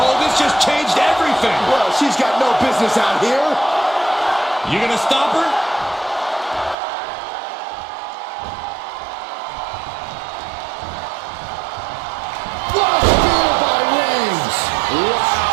This just changed everything. Well, she's got no business out here. You gonna stop her? What a spear by Reigns.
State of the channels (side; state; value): left; drops out; at 6.8 s